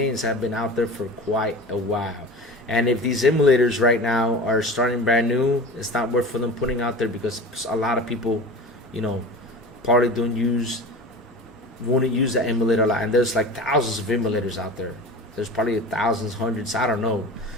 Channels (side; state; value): both; normal; correlation 0.34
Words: have been out there for quite a while. And if these emulators right now are starting brand new, it's not worth for them putting out there because a lot of people, probably wouldn't use the emulator a lot. And there's like thousands of emulators out there. There's probably thousands, hundreds, I don't know.